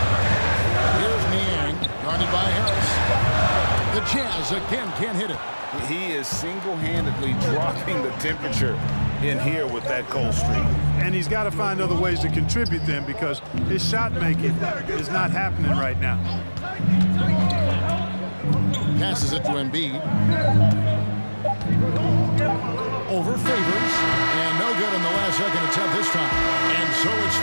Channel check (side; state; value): both; inverted; correlation -1.00